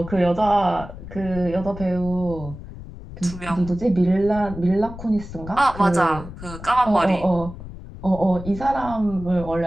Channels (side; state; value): left; noise; rumble, 13 dB below the sound